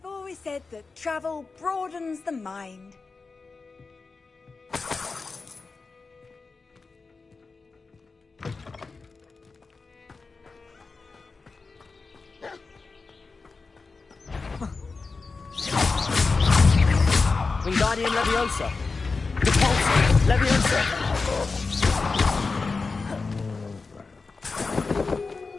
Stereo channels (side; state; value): right; quieter; 4.2 dB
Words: always said that travel broadens the mind. Wingardium Leviosa. Repulsor. Leviosa.